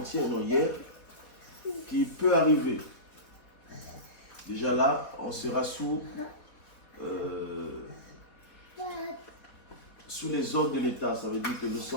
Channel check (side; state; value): right; late; 4.1 ms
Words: non hier, qui peut arriver. Déjà là, on sera sous les ordres de l'État. Ça veut dire que nous